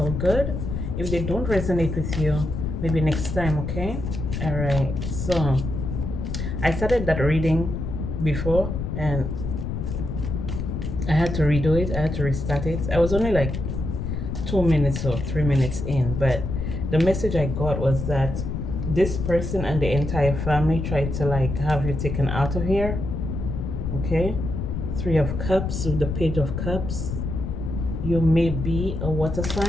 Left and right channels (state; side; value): noise; left; rumble, 4 dB below the sound